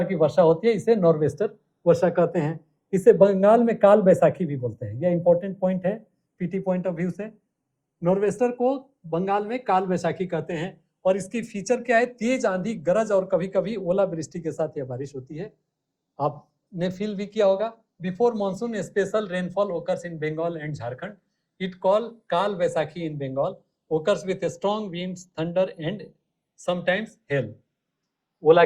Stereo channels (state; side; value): identical; both; correlation 1.00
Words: की वर्षा होती है, इसे नॉर्वेस्टर वर्षा कहते हैं। इसे बंगाल में काल बैसाखी भी बोलते हैं। यह इंपॉर्टेंट पॉइंट है पीटी पॉइंट ऑफ व्यू से। नॉर्वेस्टर को बंगाल में काल बैसाखी कहते हैं, और इसकी फीचर क्या है? तेज आंधी, गरज और कभी कभी ओलावृष्टि के साथ यह बारिश होती है। आपने फील भी किया होगा। Before monsoon special rainfall occurs in Bengal and Jharkhand, it call Kal Baisakhi in Bengal, occurs with strong winds, thunder and sometimes hail. ओला